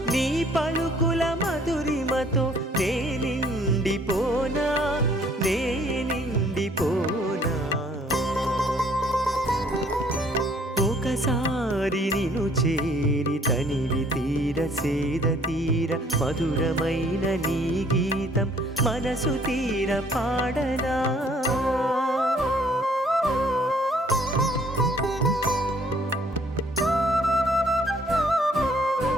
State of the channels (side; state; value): both; normal; correlation 0.60